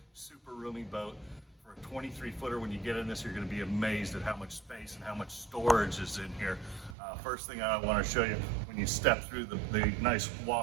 super roomy boat. For a 23 footer, when you get in this, you're going to be amazed at how much space and how much storage is in here. First thing I want to show you, when you step through the nice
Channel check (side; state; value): left; drops out; at 7.0 s